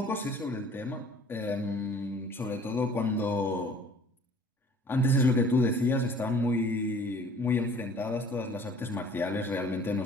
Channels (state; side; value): normal; both; correlation 0.51